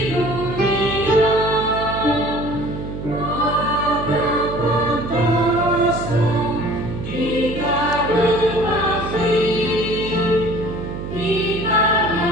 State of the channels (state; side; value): noise; right; hum, 7 dB below the sound